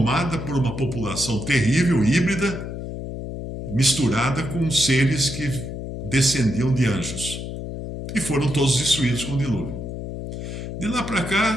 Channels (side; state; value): left; noise; hum, 7 dB below the sound